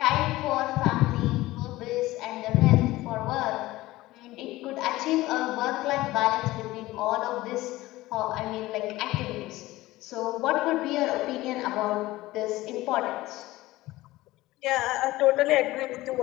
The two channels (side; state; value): right; quieter; 18.0 dB